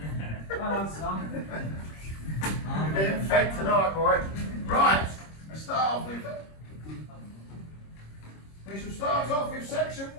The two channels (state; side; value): late; right; 26 ms